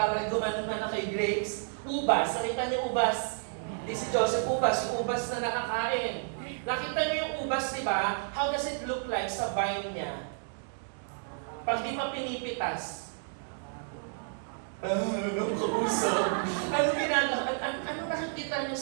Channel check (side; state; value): left; silent; digital silence